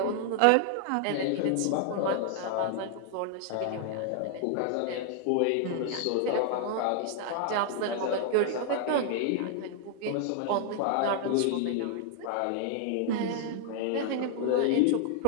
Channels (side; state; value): both; different; correlation 0.00